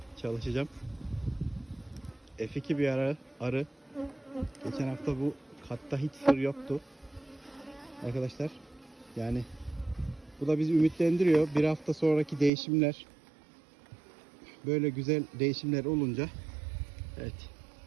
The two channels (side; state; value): left; drops out; at 12.5 s